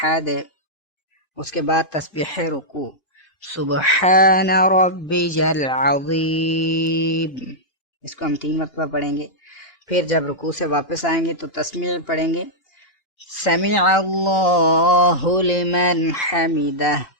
उसके बाद तस्बीह रुकू, सुबहान रब्बिल अज़ीम। इसको हम 3 मरतबा पढ़ेंगे। फिर जब रुकू से वापस आएंगे तो तस्मीह पढ़ेंगे, समिअ अल्लाहु लिमन हमिदह।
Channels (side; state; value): right; late; 2.8 ms